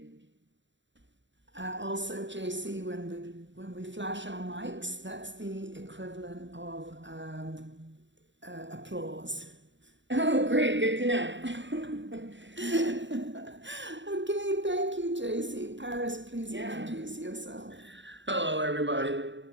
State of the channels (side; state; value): left; late; 0.54 ms